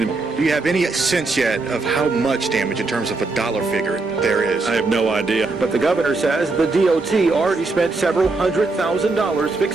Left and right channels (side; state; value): left; quieter; 3.5 dB